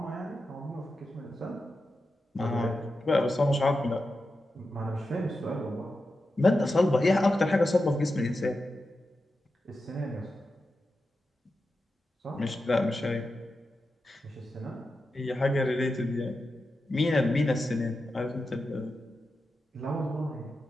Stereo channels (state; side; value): normal; both; correlation 0.90